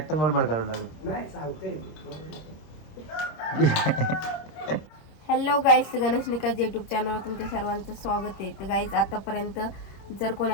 बडबड करावं लागेल. हॅलो गाईज, गणेश निकाज यूट्यूब चॅनलवर तुमच्या सर्वांचं स्वागत आहे. तर गाईज, आतापर्यंत जर कोणी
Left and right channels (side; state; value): right; late; 26 ms